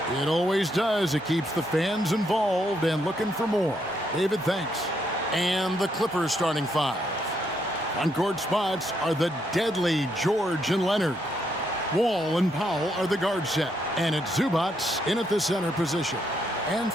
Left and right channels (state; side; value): normal; both; correlation 0.76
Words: It always does. It keeps the fans involved and looking for more. David, thanks. And the Clippers starting five. On court spots are the deadly George and Leonard. Wall and Powell are the guard set, and it's Zubac in at the center position. And